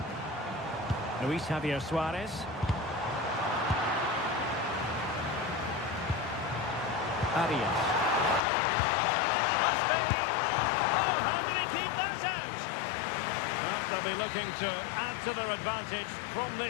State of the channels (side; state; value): right; drops out; at 8.4 s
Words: Luis Javier Suarez. Arias. Must be! Oh, how did he keep that out? Well, they'll be looking to add to their advantage from